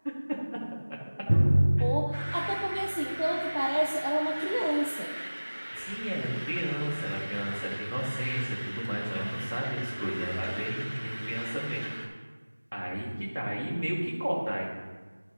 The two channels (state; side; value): inverted; both; correlation -1.00